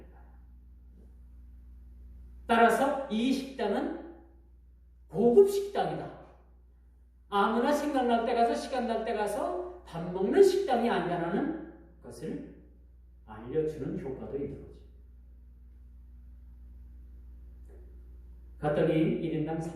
거예요. 따라서 이 식당은 고급 식당이다. 아무나 생각날 때 가서 시간 날 때 가서 밥 먹는 식당이 아니라는 것을 알려주는 효과도 있는 거죠. 갔더니 1인당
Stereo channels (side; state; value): both; identical; correlation 1.00